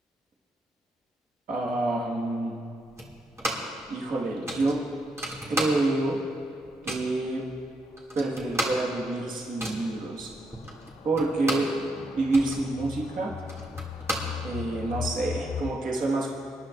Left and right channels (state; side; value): normal; both; correlation 0.79